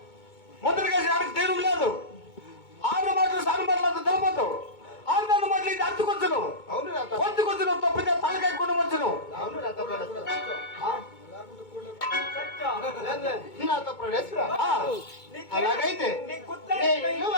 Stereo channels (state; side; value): late; right; 2.2 ms